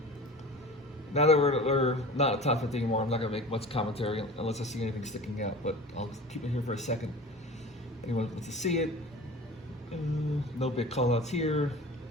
Now that we're not at top 50 anymore, I'm not gonna make much commentary unless I see anything sticking out, but I'll keep it here for a second. Anyone wants to see it? No big call outs here.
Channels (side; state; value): both; normal; correlation 0.36